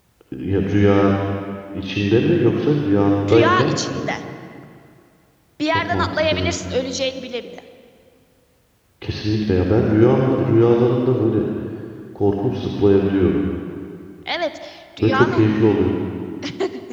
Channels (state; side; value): identical; both; correlation 1.00